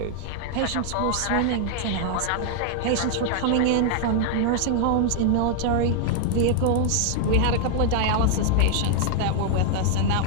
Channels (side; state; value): both; different; correlation 0.00